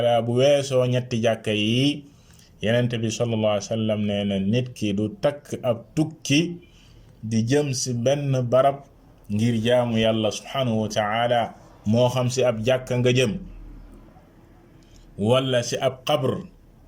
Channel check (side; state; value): both; identical; correlation 1.00